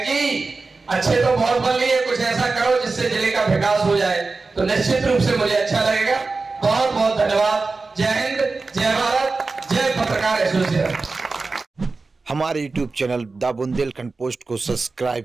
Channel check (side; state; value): left; quieter; 3.9 dB